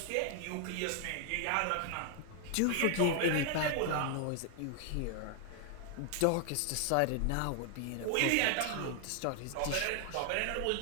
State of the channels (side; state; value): both; different; correlation 0.00